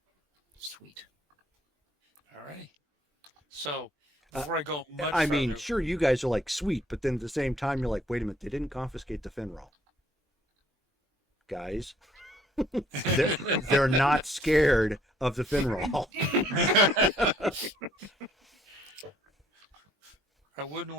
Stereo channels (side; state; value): both; normal; correlation 0.64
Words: Sweet. All right. So, before I go much I mean, further, sure, you guys are like, sweet, but then at the same time, you're like, wait a minute, they didn't confiscate the Finroll. Guys, they're not scared of the Finroll. I wouldn't